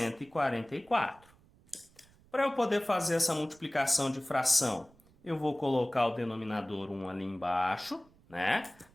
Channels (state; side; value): noise; right; rumble, 29 dB below the sound